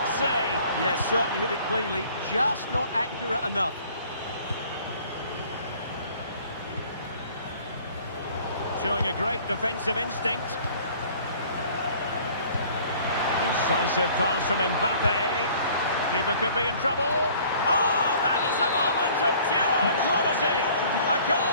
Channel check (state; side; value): inverted; both; correlation -0.53